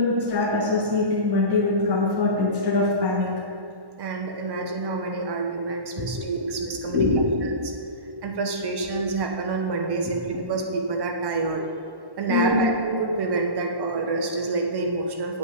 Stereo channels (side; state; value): left; late; 1.1 ms